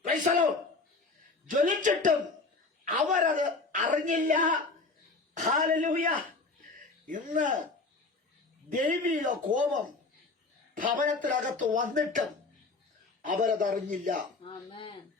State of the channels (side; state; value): right; quieter; 3.7 dB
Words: Price the Lord. ജ്വലിച്ചിട്ടും അവരത് അറിഞ്ഞില്ല. ഹല്ലേലൂയ. ഇന്ന് ദൈവിക കോപം ഭവനത്തിനകത്ത് വന്നിട്ടും അവരതറിഞ്ഞില്ല.